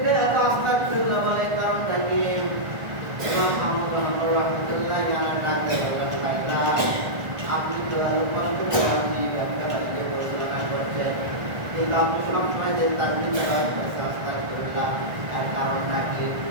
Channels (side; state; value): left; late; 1.4 ms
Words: এত আস্তাগফিরুল্লাহ বলে কারণটা কি? ইমাম আহমদ বিন হাম্বল রাহমাতুল্লাহি আলাইহি ডাকতে বললেন, ভাইরা আপনি তো আরো কষ্ট করে আপনি ব্যবসা বাণিজ্য পরিচালনা করছেন, কিন্তু আপনি সবসময় যে তাকবীরটা করছেন আস্তাগফিরুল্লাহ, এর কারণটা কি?